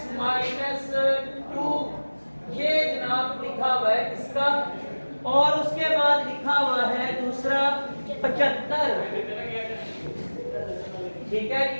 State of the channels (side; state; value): both; inverted; correlation -1.00